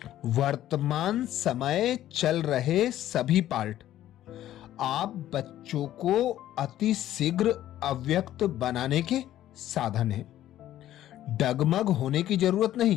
वर्तमान समय चल रहे सभी पार्ट आप बच्चों को अति शीघ्र अव्यक्त बनाने के साधन हैं। डगमग होने की जरूरत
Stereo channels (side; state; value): right; quieter; 12.9 dB